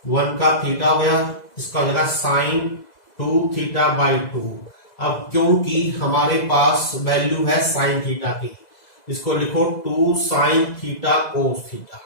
1 का थीटा हो गया, इसका हो जाएगा साइन 2 थीटा बाई 2। अब क्योंकि हमारे पास वैल्यू है साइन थीटा की, इसको लिखो 2 sine theta cos theta.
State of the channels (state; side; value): late; right; 2.0 ms